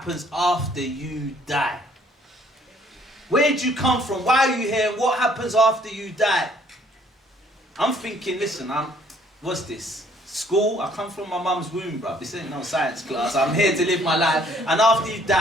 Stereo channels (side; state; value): both; normal; correlation 0.62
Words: after you die? Where did you come from? Why are you here? And what happens after you die? I'm thinking, listen, what's this? School? I come from my mum's womb, bruv. This ain't no science class. I'm here to live my life. And after you